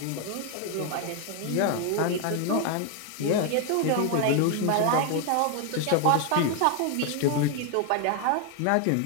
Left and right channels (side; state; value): both; different; correlation 0.01